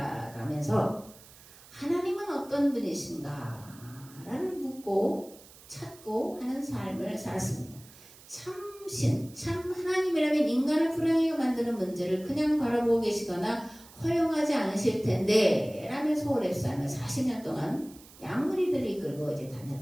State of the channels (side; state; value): right; noise; hiss, 22 dB below the sound